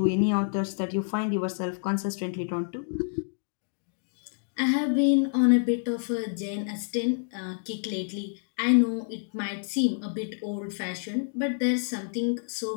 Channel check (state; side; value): silent; right; digital silence